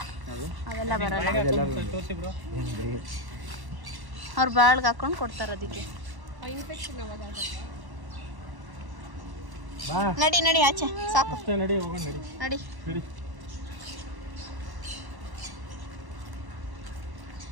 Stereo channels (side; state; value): left; late; 1.1 ms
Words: ಅವೆಲ್ಲ ಬರಲ್ಲ. ತೋರಿಸಿ ಬ್ರೋ. ಅವ್ರು ಬಾಳ್ಗೆ ಹಾಕೊಂಡು ಕೊಡ್ತಾರ ಅದಕ್ಕೆ. ಬಾ ನಡಿ ಆಚೆ ಸಾಕು. ಅಷ್ಟೇ, ನಡಿ ಹೋಗೋಣ. ನಡಿ.